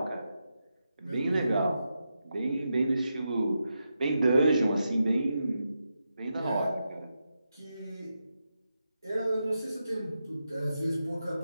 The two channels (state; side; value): inverted; both; correlation -0.87